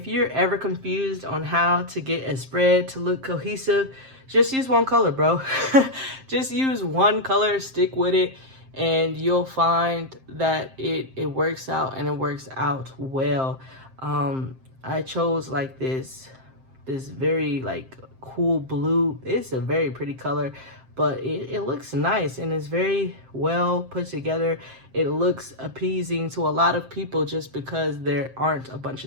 you're ever confused on how to get a spread to look cohesive, just use one color, bro. Just use one color, stick with it, and you'll find that it works out, and it works out well. I chose like this very like cool blue. It's a very pretty color, but it looks nice, and it's very well put together. It looks appeasing to a lot of people just because there aren't a bunch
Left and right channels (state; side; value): late; left; 7.6 ms